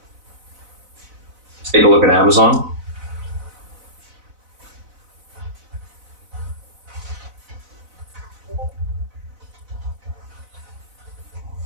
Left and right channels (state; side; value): late; left; 4.0 ms